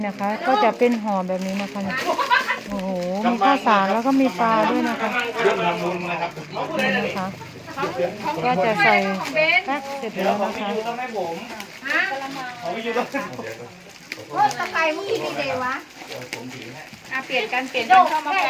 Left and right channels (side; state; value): both; identical; correlation 1.00